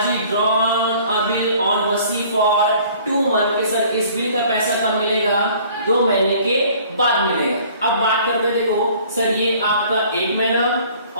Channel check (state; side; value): inverted; both; correlation -0.53